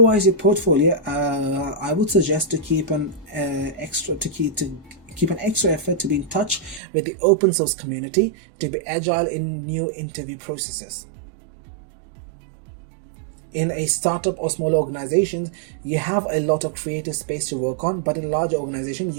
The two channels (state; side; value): drops out; left; at 6.8 s